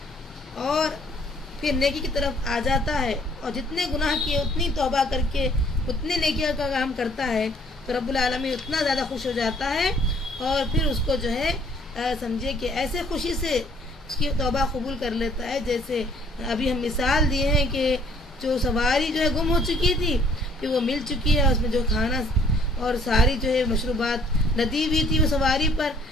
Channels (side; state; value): both; normal; correlation 0.61